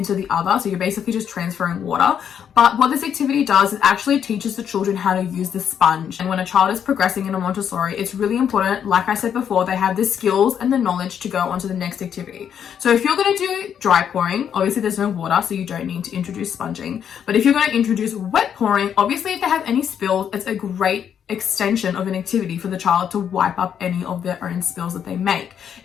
the other. So you're basically just transferring water. But what this activity does is actually teaches the children how to use the sponge. And when a child is progressing in a Montessori, it's really important, like I said before, they have the skills and the knowledge to go on to the next activity. So if you're going to do dry pouring, obviously there's no water, so you don't need to introduce sponging. But if you're going to introduce wet pouring, obviously if they have any spills, it's a great extension of an activity for the child to wipe up any of their own spills that they make.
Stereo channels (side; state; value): right; quieter; 8.5 dB